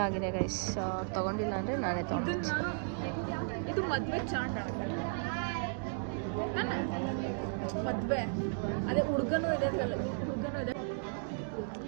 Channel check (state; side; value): silent; left; digital silence